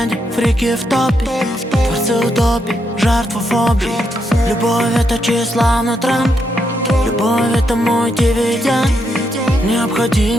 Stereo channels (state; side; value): normal; both; correlation 0.80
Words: фрики в топе. Творцы утопии, жертва фобии. Любовь — это тщеславный тренд. Любовь — это мой дивиденд.